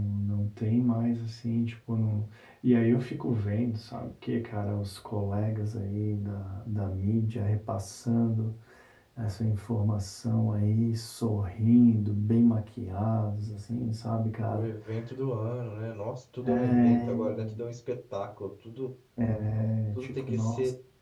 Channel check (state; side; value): identical; both; correlation 1.00